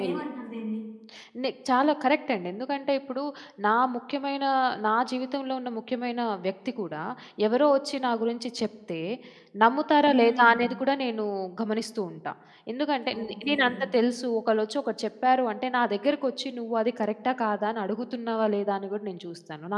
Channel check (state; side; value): identical; both; correlation 1.00